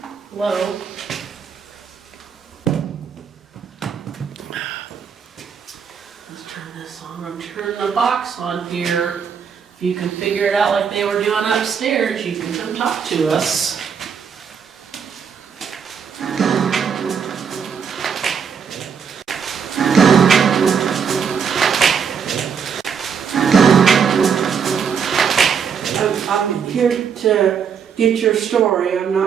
Hello. Let's turn this on. I'm turning the box on here. If you can figure it out like they were doing upstairs, you can come talk to us. I'm here to get your story. I'm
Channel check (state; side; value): quieter; left; 6.8 dB